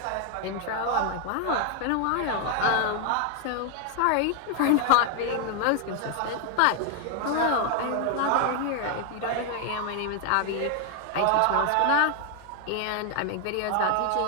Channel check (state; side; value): different; both; correlation 0.00